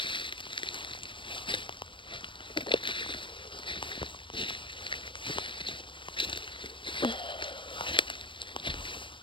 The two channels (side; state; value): right; late; 0.24 ms